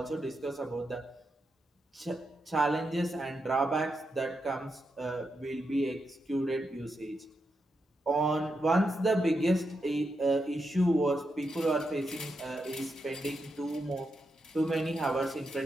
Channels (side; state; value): both; normal; correlation 0.85